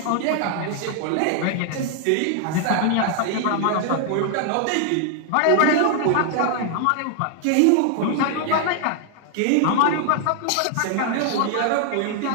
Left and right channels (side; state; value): both; different; correlation 0.00